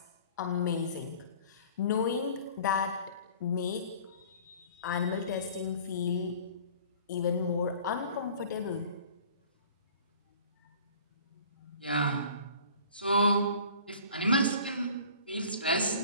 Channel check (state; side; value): inverted; both; correlation -0.47